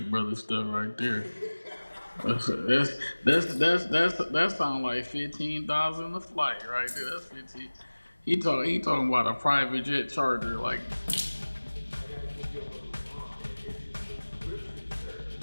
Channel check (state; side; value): inverted; both; correlation -1.00